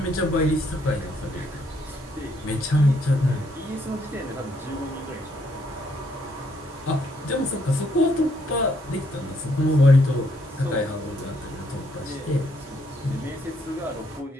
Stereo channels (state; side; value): normal; both; correlation 0.71